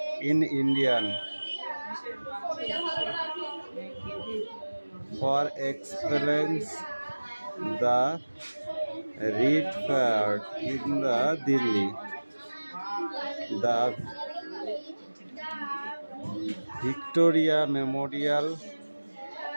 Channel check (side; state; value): both; inverted; correlation -1.00